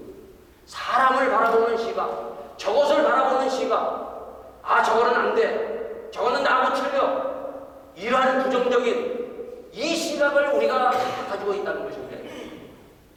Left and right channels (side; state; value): both; identical; correlation 1.00